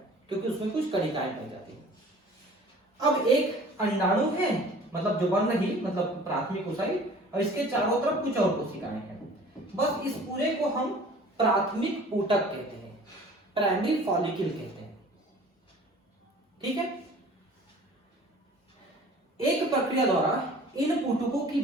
क्योंकि उसमें कुछ कणिकाएं पाई जाती हैं। अब एक अंडाणु है, मतलब जो बन रही, मतलब प्राथमिक oocyte, और इसके चारों तरफ कुछ और कोशिकाएं हैं। बस इस पूरे को हम प्राथमिक ऊतक कहते हैं, प्राइमरी फॉलिकल कहते हैं। ठीक है, एक प्रक्रिया द्वारा इन ऊतकों की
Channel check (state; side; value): normal; both; correlation 0.47